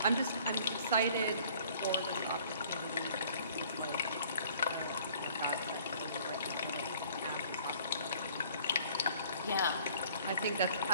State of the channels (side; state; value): both; inverted; correlation -0.55